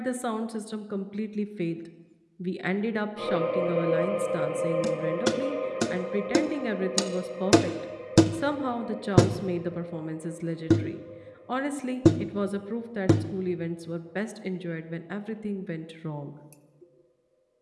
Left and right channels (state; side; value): identical; both; correlation 1.00